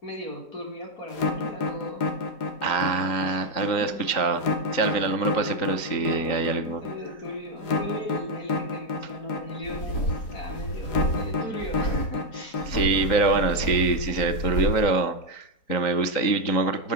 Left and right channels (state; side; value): late; right; 3.9 ms